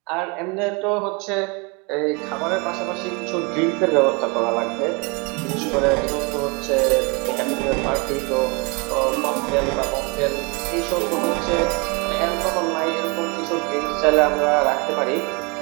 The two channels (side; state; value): left; quieter; 30.0 dB